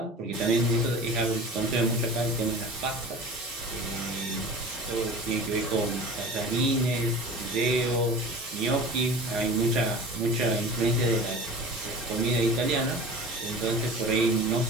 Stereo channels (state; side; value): normal; both; correlation 0.37